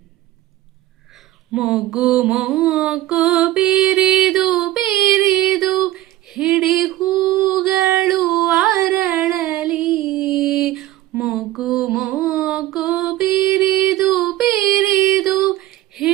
ಮೊಗ್ಗು ಮೊಗ್ಗು ಬಿರಿದು ಬಿರಿದು ಹಿಡಿ ಹೂಗಳು ಅರಳಲಿ. ಮೊಗ್ಗು ಮೊಗ್ಗು ಬಿರಿದು ಬಿರಿದು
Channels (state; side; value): quieter; left; 15.4 dB